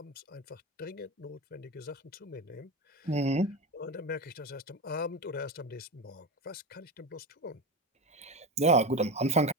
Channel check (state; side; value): normal; both; correlation 0.21